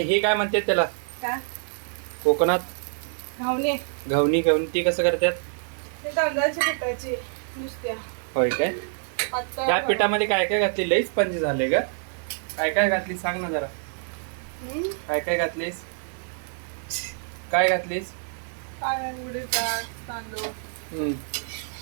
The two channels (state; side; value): silent; left; 58 dB below the other